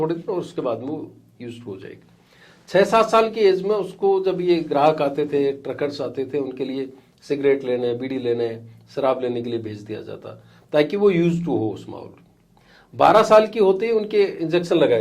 दिन और उसके बाद में वो यूज्ड हो जाएगी। 6-7 साल की एज में उसको जब ये ग्राहक आते थे, ट्रकर्स आते थे, उनके लिए सिगरेट लेने, बीड़ी लेने, शराब लेने के लिए भेज दिया जाता ताकि वो यूज टू हो उस माहौल। 12 साल की होते ही उनके इंजेक्शन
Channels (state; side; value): identical; both; correlation 1.00